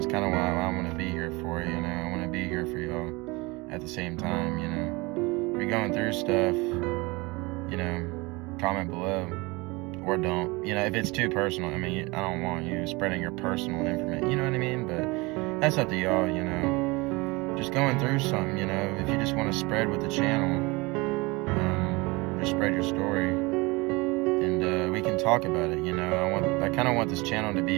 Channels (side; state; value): left; quieter; 24.7 dB